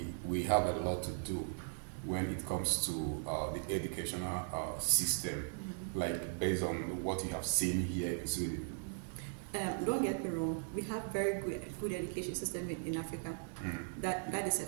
we have a lot to do when it comes to the educational system, like based on what you have seen here in Sweden? Don't get me wrong, we have very good education system in Africa. That is a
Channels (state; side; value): silent; left; digital silence